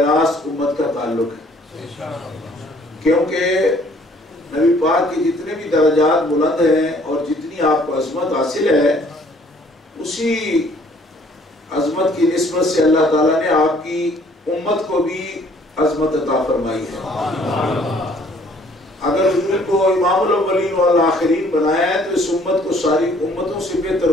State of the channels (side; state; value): both; normal; correlation 0.60